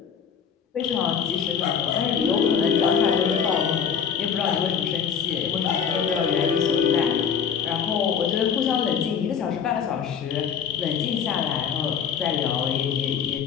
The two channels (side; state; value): right; quieter; 7.4 dB